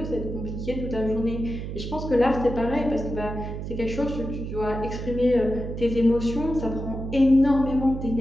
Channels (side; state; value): right; noise; hum, 6 dB below the sound